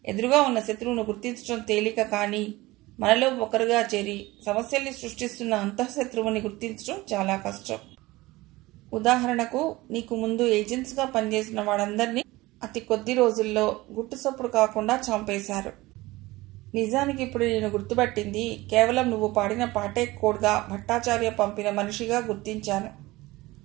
ఎదురుగా ఉన్న శత్రువును గుర్తించడం తేలిక, కానీ మనలో ఒకరుగా చేరి సమస్యల్ని సృష్టిస్తున్న అంతఃశత్రువుని గుర్తించడం చాలా కష్టం. ఉదాహరణకు, నీకు ముందు ఏజెంట్స్గా పనిచేసిన వాళ్ళందరినీ అతి కొద్ది రోజుల్లో గుట్టుసప్పుడు కాకుండా చంపేశారు. నిజానికి ఇప్పుడు నేను గుర్తుపట్టింది కేవలం నువ్వు పాడిన పాటే కోడ్గా భట్టాచార్య పంపిన మనిషిగా గుర్తించాను.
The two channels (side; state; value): left; quieter; 19.9 dB